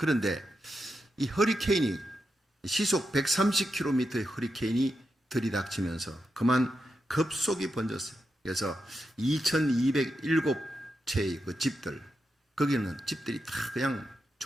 이 허리케인이 시속 130km의 허리케인이 들이닥치면서 그만 급속히 번졌어요. 그래서 2207채의 그 집들, 거기는 집들이 다 그냥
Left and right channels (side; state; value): both; normal; correlation 0.87